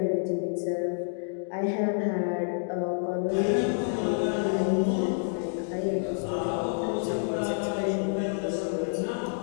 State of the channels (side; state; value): right; silent; digital silence